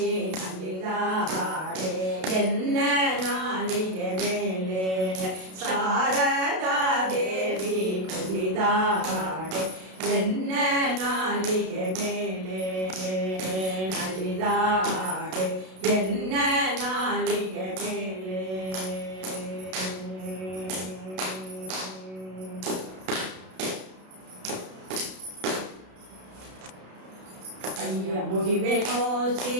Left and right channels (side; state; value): left; late; 32 ms